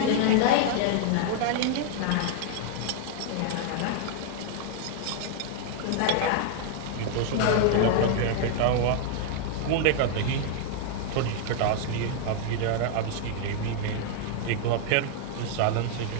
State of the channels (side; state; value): both; different; correlation 0.00